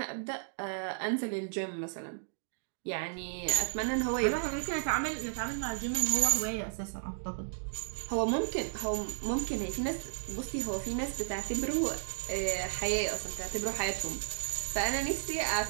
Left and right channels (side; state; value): left; silent; digital silence